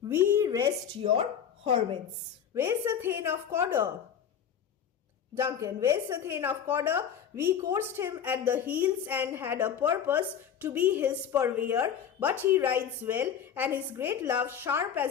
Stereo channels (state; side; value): quieter; right; 8.3 dB